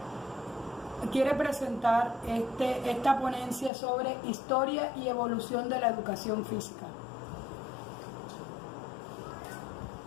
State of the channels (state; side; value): drops out; right; at 3.7 s